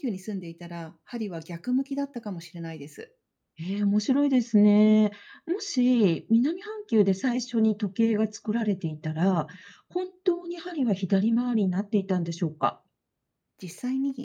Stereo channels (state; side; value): identical; both; correlation 1.00